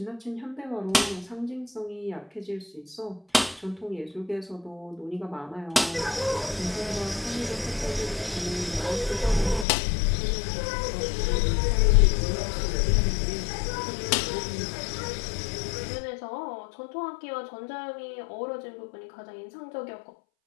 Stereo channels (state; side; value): drops out; right; at 9.7 s